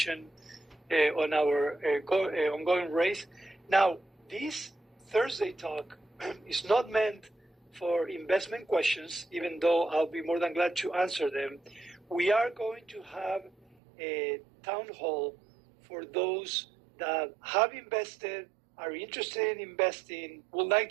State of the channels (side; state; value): left; drops out; at 13.8 s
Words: on our ongoing race. Now, this Thursday talk is not meant for investment questions, even though I'll be more than glad to answer them. We are going to have a town hall for those that have invested, are interested in investing, would like